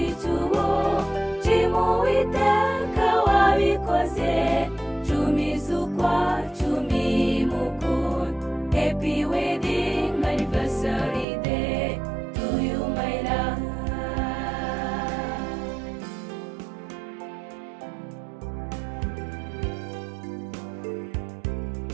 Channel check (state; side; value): drops out; left; at 11.2 s